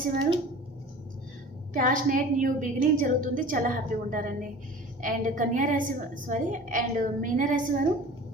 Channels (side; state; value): both; normal; correlation 0.41